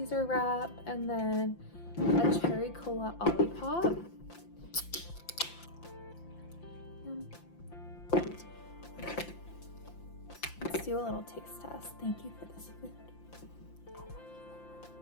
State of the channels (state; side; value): late; right; 5.8 ms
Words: wrap, and then a cherry cola olipop. Let's do a little taste test. Thank you for this food.